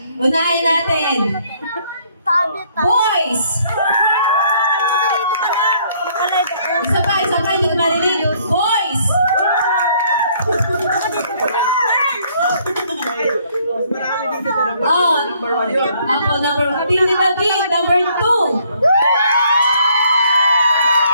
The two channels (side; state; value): both; inverted; correlation -0.64